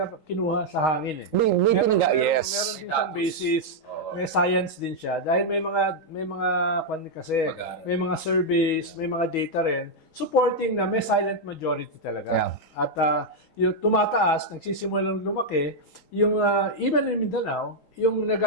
kinuha sa hangin eh. May pinangga, Meron yes. din siyang Status. basis, Oo. may science din siya. Dahil may mga kasi, Pag-aaral. may mga surveys, may mga data rin, supporting na may silent majority talaga. Yeah. At yung tumataas, nagsisimulang lumaki, yung even in Mindanao, yung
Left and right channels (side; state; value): right; late; 3.8 ms